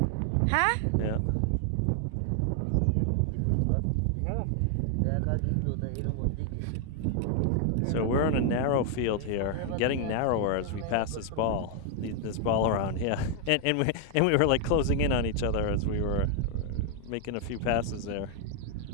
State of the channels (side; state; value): both; different; correlation 0.00